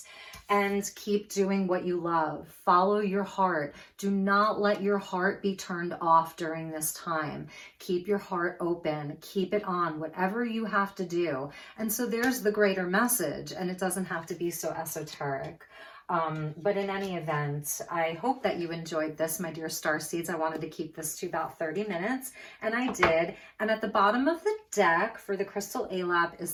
and keep doing what you love. Follow your heart. Do not let your heart be turned off during this time. Keep your heart open. Keep it on, whatever you have to do. And so there's the greater message, and it doesn't have to be so esoteric. But in any event, I hope that you enjoyed this, my dear Starseeds. I wanted to keep this to about 30 minutes, and I did. And at the bottom of the deck for the crystal ALAP is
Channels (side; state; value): both; identical; correlation 1.00